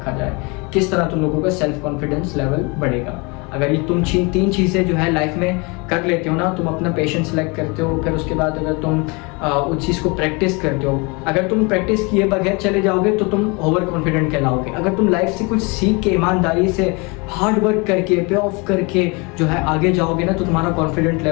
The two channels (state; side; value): quieter; right; 29.0 dB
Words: जाए, किस तरह तुम लोगों का सेल्फ कॉन्फिडेंस लेवल बढ़ेगा। अगर ये तुम तीन चीज़ें जो है लाइफ में कर लेते हो ना, तुम अपना पेशेंस सेलेक्ट करते हो, फिर उसके बाद अगर तुम उस चीज़ को प्रैक्टिस करते हो, अगर तुम प्रैक्टिस किए बगैर चले जाओगे तो तुम ओवर कॉन्फिडेंट कहलाओगे। अगर तुम लाइफ से कुछ सीख के, ईमानदारी से, हार्ड वर्क करके, पे ऑफ करके जो है आगे जाओगे ना, तो तुम्हारा कॉन्फिडेंट